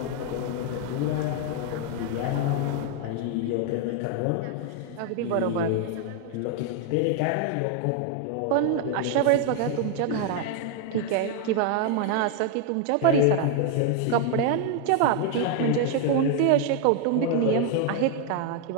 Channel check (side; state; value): both; different; correlation 0.01